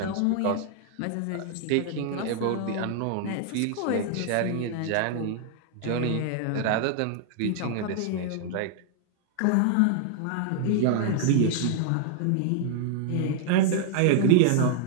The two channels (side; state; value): both; different; correlation -0.01